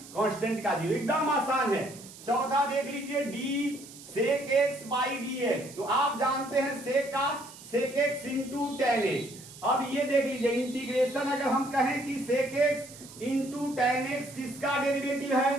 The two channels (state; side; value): noise; right; hiss, 17 dB below the sound